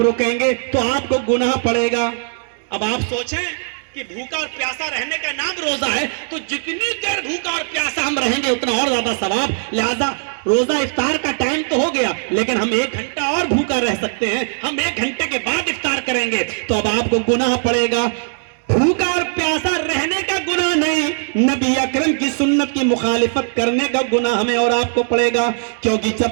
گے تو آپ کو گناہ پڑے گا. اب آپ سوچیں کہ بھوکا اور پیاسا رہنے کا نام روزہ ہے تو جتنی دیر بھوکا اور پیاسا ہم رہیں گے اتنا اور زیادہ ثواب. لہذا روزہ افطار کا ٹائم تو ہو گیا لیکن ہم 1 گھنٹہ اور بھوکا رہ سکتے ہیں. ہم 1 گھنٹے کے بعد افطار کریں گے تو اب آپ کو گناہ پڑے گا. بھوکا اور پیاسا رہنے کا گناہ نہیں، نبی اکرم کی سنت کی مخالفت کرنے کا گناہ ہمیں اور آپ کو پڑے گا. کیونکہ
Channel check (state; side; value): silent; left; digital silence